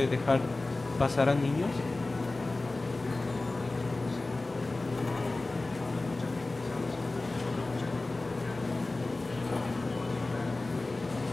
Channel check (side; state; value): right; quieter; 3.1 dB